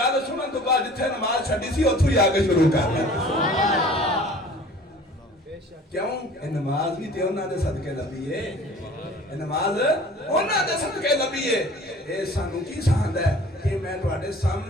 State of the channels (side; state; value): both; normal; correlation 0.47